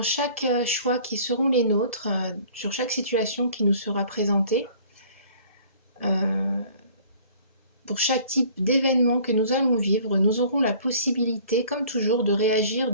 chaque choix qui seront les nôtres, sur chaque situation qui nous sera présentée, euh, pour chaque type d'événement que nous allons vivre, nous aurons la possibilité, comme toujours, de réagir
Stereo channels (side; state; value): both; inverted; correlation -0.52